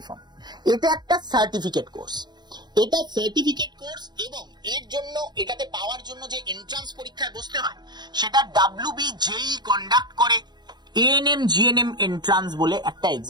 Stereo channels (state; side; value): late; left; 0.21 ms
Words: ফর্ম। এটা একটা সার্টিফিকেট কোর্স, এটা সার্টিফিকেট কোর্স, এবং এর জন্য, এটাতে পাওয়ার জন্য যে এন্ট্রান্স পরীক্ষায় বসতে হয় সেটা WBJEE কন্ডাক্ট করে এএনএম জিএনএম এন্ট্রান্স বলে একটা